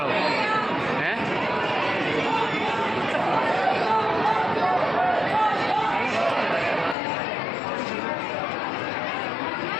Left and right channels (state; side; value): drops out; right; at 7.0 s